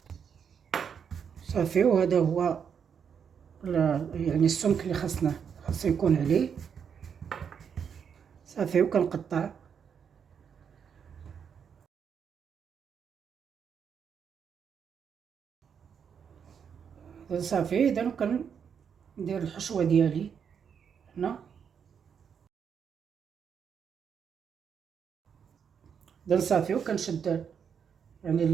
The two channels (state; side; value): quieter; left; 7.2 dB